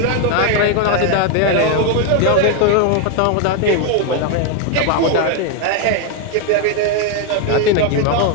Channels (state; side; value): different; both; correlation 0.01